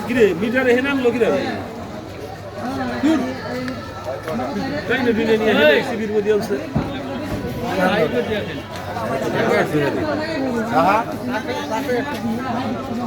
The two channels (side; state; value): both; identical; correlation 1.00